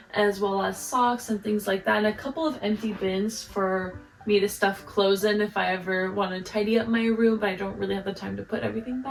as well as socks and things like that, and a couple of empty bins for me to stuff clothes in if I ever want to tidy up my room, but I don't really have the time to put everything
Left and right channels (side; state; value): both; identical; correlation 1.00